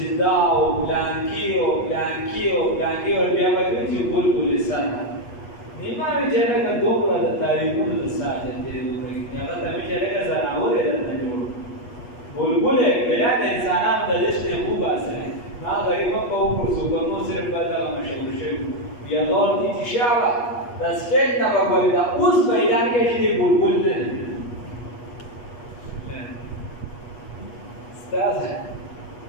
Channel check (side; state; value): right; late; 8.3 ms